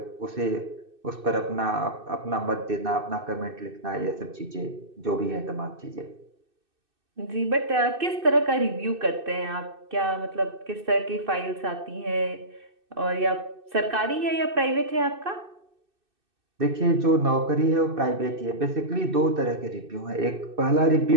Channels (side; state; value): left; late; 2.6 ms